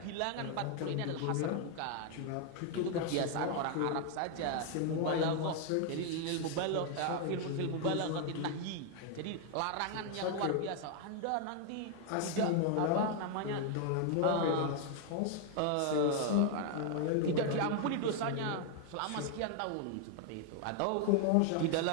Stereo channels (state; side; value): different; both; correlation 0.00